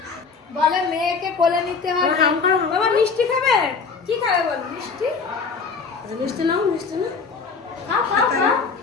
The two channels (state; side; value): quieter; right; 5.0 dB